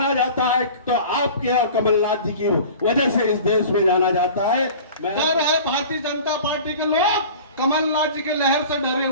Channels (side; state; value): both; inverted; correlation -0.40